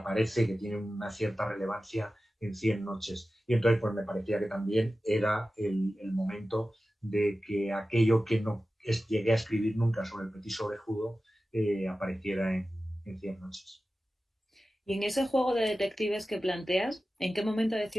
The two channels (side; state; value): both; normal; correlation 0.95